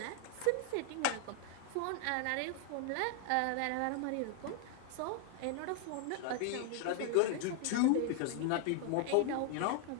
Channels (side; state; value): both; different; correlation 0.00